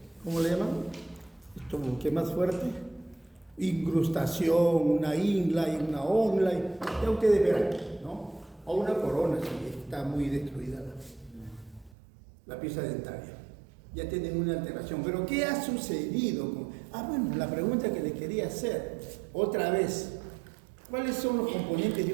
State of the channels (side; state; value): left; drops out; at 12.0 s